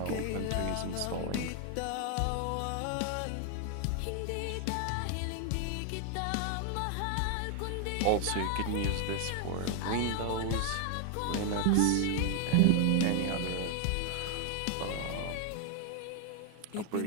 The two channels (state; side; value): different; both; correlation 0.00